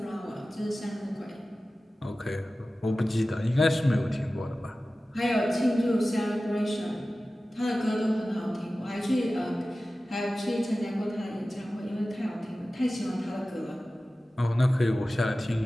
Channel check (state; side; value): normal; both; correlation 0.96